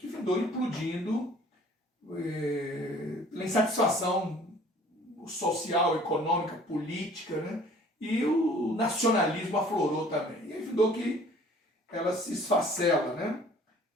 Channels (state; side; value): normal; both; correlation 0.52